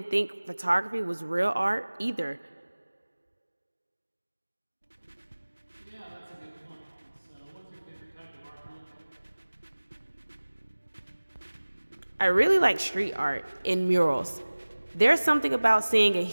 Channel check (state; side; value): inverted; both; correlation -1.00